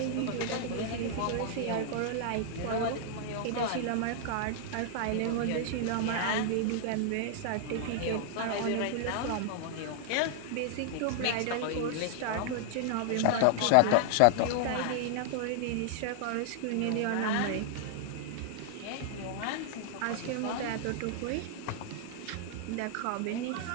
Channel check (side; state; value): both; different; correlation -0.01